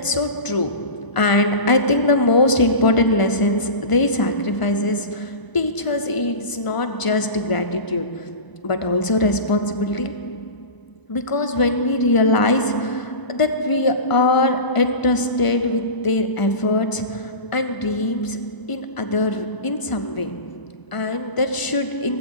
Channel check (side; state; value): right; late; 1.0 ms